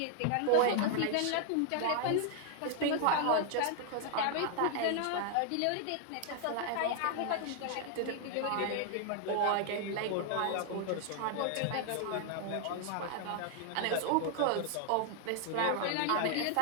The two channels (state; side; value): different; both; correlation 0.00